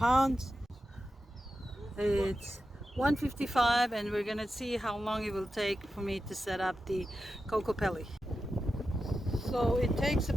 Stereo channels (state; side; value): normal; both; correlation 0.91